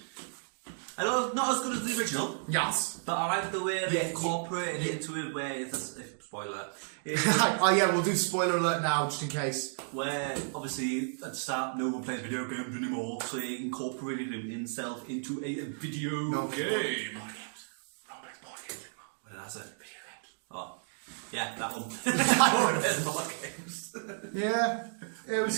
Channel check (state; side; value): silent; left; digital silence